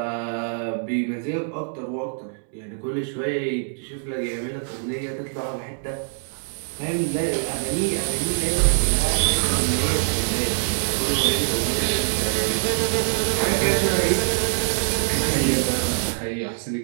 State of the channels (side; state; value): left; silent; digital silence